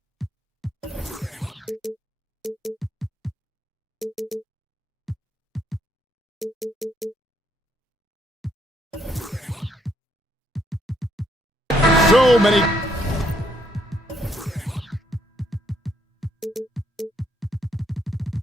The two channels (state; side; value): normal; both; correlation 0.71